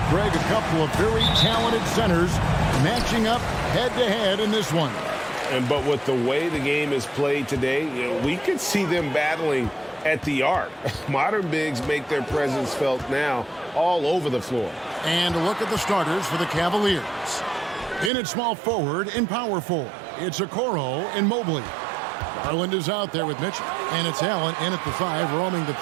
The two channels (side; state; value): left; drops out; at 18.1 s